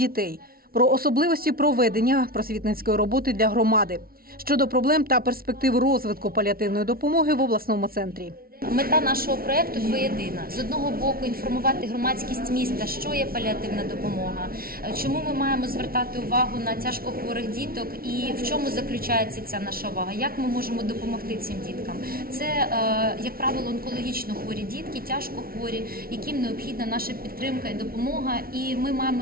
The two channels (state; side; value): late; left; 0.43 ms